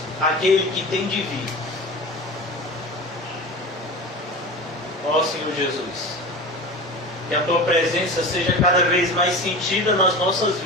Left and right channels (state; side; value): normal; both; correlation 0.31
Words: aquele que tem de vir. Ó Senhor Jesus, que a Tua presença seja cada vez mais sentida nas nossas